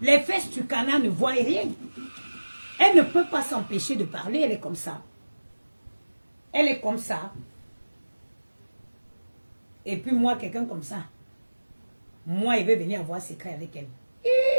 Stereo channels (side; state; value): both; inverted; correlation -1.00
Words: fesses du canard ne voient rien. Elle ne peut pas s'empêcher de parler, elle est comme ça. Elle est comme ça. Et puis moi, quelqu'un comme ça, moi, il veut venir avoir secret avec elle.